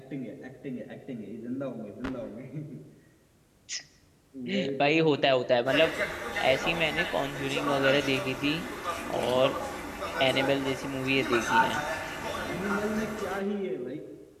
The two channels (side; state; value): both; identical; correlation 1.00